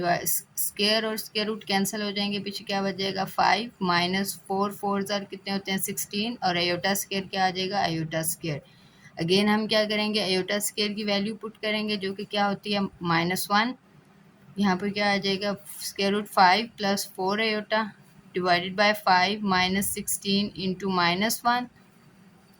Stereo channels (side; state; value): both; identical; correlation 1.00